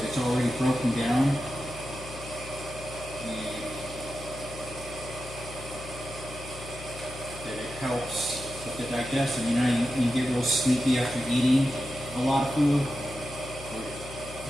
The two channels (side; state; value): left; noise; hum, 14 dB below the sound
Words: it's already broken down, and that it helps with the digestion. You know, you get real sleepy after eating a lot of food, or